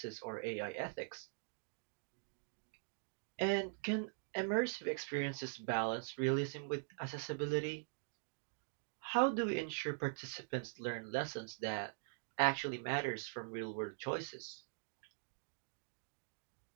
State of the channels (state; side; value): silent; left; digital silence